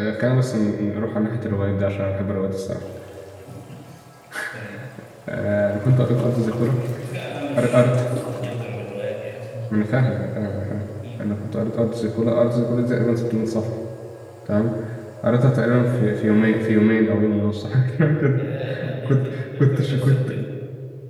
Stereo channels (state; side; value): identical; both; correlation 1.00